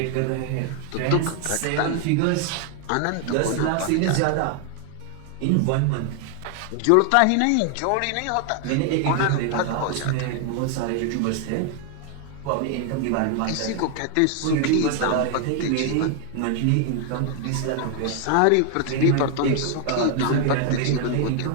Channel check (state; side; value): different; both; correlation 0.00